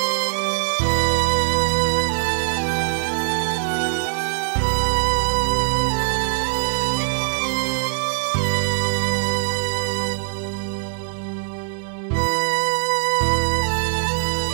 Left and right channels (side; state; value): left; silent; digital silence